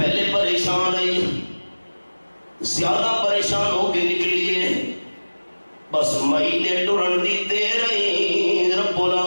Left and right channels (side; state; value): both; inverted; correlation -1.00